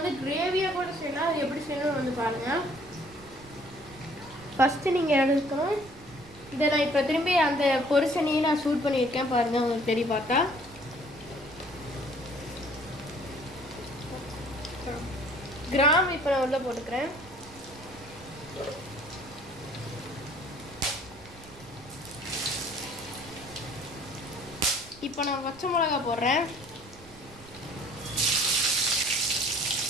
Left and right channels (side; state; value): right; noise; rumble, 21 dB below the sound